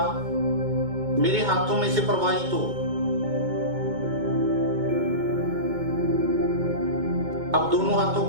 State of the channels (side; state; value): left; late; 2.2 ms